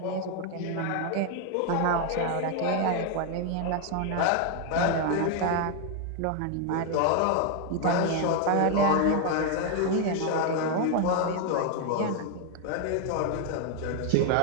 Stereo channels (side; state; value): both; different; correlation 0.01